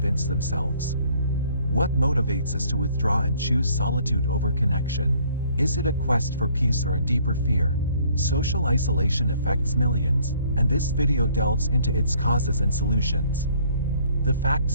themselves. What motivates us to withdraw and choose solitude over connection? Is it a quest for peace or a deeper fear? Social isolation affects millions, and this video delves into its causes and solutions. The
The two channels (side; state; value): both; inverted; correlation -0.60